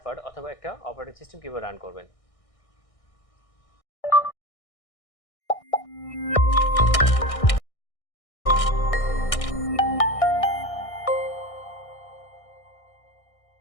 পার্ট, অথবা একটা অপারেটিং সিস্টেম কিভাবে রান করবেন।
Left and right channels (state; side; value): late; right; 1.6 ms